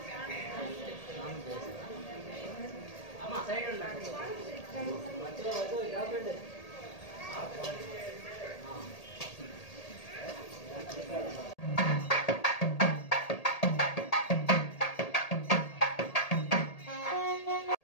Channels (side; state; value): right; late; 1.8 ms